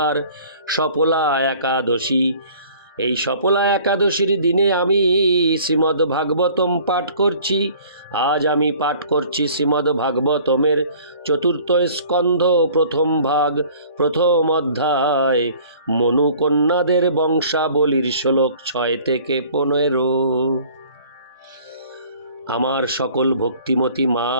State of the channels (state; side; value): inverted; both; correlation -0.51